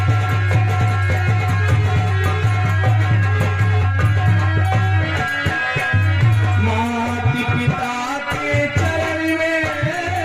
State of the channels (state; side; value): identical; both; correlation 1.00